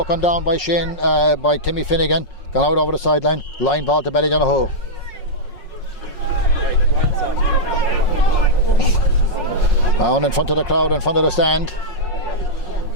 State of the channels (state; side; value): late; right; 5.5 ms